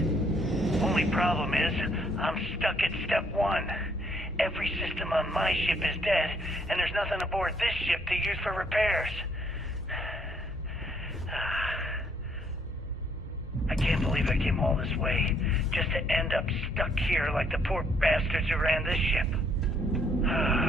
Only problem is, I'm stuck at step 1. Every system on my ship is dead, and there's nothing aboard this ship to use for repairs. I can't believe I came all this way, just to end up stuck here like the poor bastards who ran this ship.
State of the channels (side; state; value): both; normal; correlation 0.67